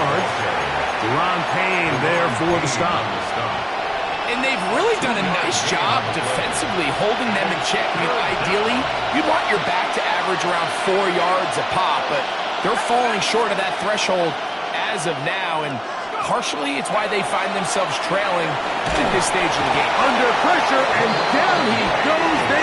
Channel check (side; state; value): both; identical; correlation 1.00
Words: Deron Payne there for the stop. And they've really done a nice job defensively holding them in check. I mean, ideally, you'd want your back to average around 4 yards a pop, but they're falling short of that threshold as of now, and partially it's why they find themselves trailing at this stage of the game. Under pressure, and down he goes.